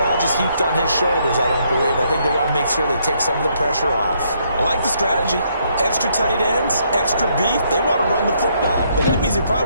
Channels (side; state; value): both; inverted; correlation -0.72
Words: just heaped on his shoulders, I don't believe. I think they want to make sure they take some of the pressure off. I like the strategy. Extra tight ends, extra beef. They want to run the football. But that means they